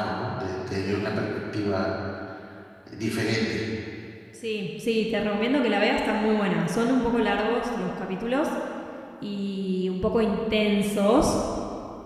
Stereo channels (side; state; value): both; identical; correlation 1.00